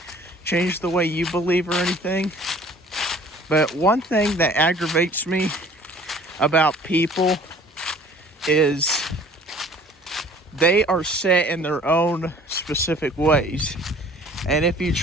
change the way you believe or anything. But one thing that aggravates me about people is they are set in their own specific ways. And if you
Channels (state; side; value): normal; both; correlation 0.51